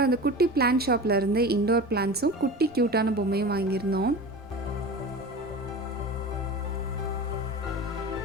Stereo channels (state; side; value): noise; right; rumble, 23 dB below the sound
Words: அந்த குட்டி பிளான்ட் ஷாப்பில் இருந்து இண்டோர் பிளான்ட்ஸும் குட்டி க்யூட்டான பொம்மையும் வாங்கியிருந்தோம்.